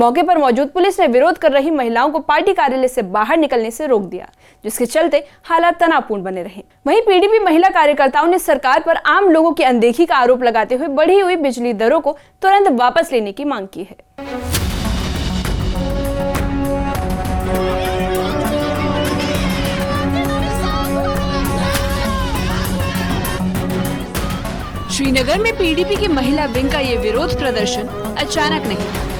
पर मौजूद पुलिस ने विरोध कर रही महिलाओं को पार्टी कार्यालय से बाहर निकलने से रोक दिया, जिसके चलते हालात तनावपूर्ण बने रहे। वहीं पीडीपी महिला कार्यकर्ताओं ने सरकार पर आम लोगों की अनदेखी का आरोप लगाते हुए बढ़ी हुई बिजली दरों को तुरंत वापस लेने की मांग की है। श्रीनगर में पीडीपी की महिला विंग का ये विरोध प्रदर्शन अचानक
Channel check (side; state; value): both; identical; correlation 1.00